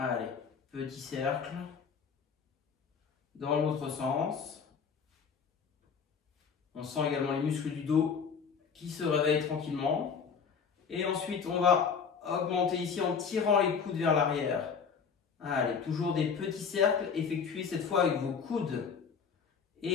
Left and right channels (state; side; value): quieter; right; 6.2 dB